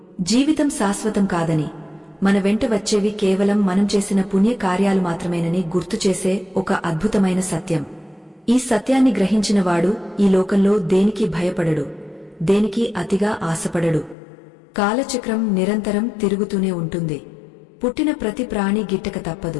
జీవితం శాశ్వతం కాదని, మన వెంట వచ్చేవి కేవలం మనం చేసిన పుణ్య కార్యాలు మాత్రమేనని గుర్తుచేసే ఒక అద్భుతమైన సత్యం. ఈ సత్యాన్ని గ్రహించినవాడు ఈ లోకంలో దేనికి భయపడడు, దేనికి అతిగా ఆశపడడు. కాలచక్రం నిరంతరం తిరుగుతూనే ఉంటుంది. పుట్టిన ప్రతి ప్రాణి గిట్టక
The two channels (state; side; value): drops out; right; at 14.2 s